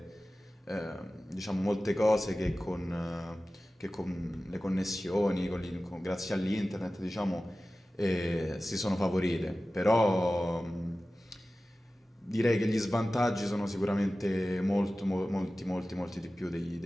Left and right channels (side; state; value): both; normal; correlation 0.96